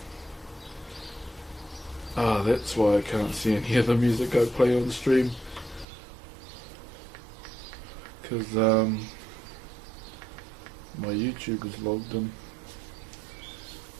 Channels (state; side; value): drops out; left; at 5.9 s